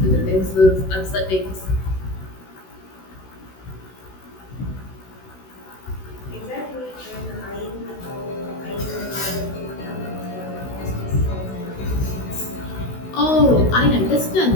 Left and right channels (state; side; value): late; right; 16 ms